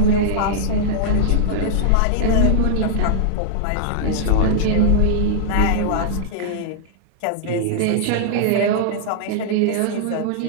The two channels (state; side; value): different; both; correlation -0.02